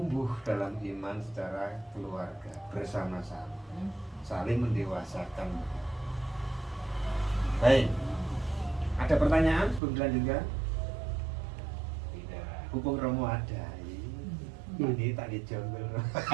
dalam iman secara keluarga bersama-sama, saling mendewasakan. Baik, ada pertanyaan sebelum dilanjutkan? Tidak, hubung Romo ada. Ini tak dijonggol.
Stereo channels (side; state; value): left; drops out; at 9.8 s